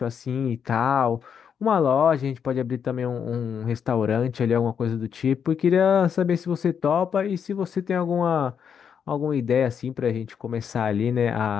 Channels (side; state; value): right; quieter; 7.5 dB